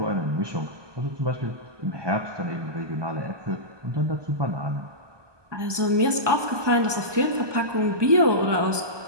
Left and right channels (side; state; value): left; late; 1.2 ms